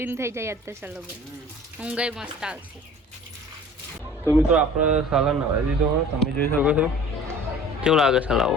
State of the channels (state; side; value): normal; both; correlation 0.45